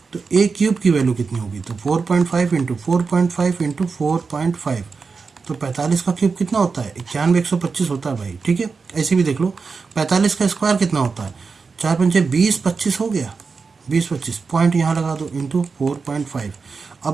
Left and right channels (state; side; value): quieter; left; 4.8 dB